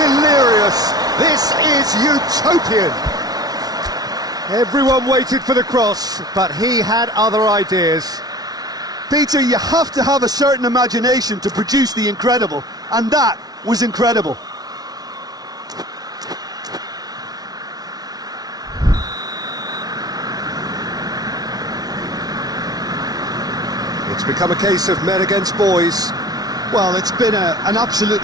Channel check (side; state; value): left; late; 0.19 ms